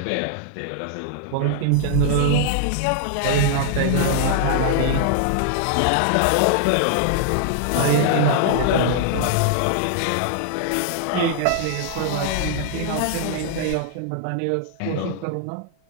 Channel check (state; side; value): different; both; correlation -0.01